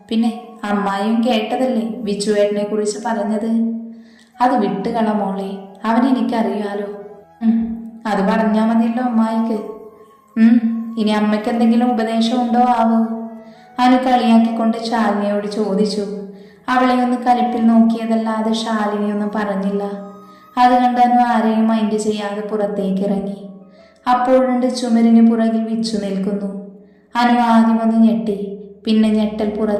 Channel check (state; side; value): identical; both; correlation 1.00